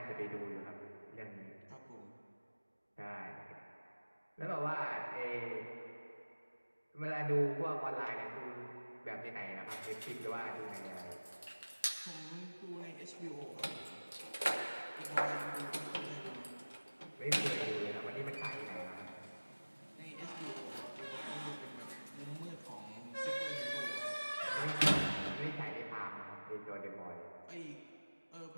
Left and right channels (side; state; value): both; inverted; correlation -1.00